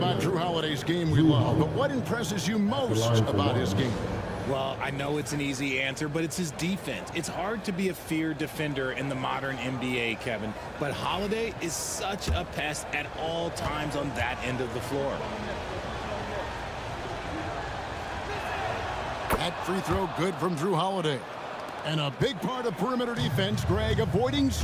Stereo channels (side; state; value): both; identical; correlation 1.00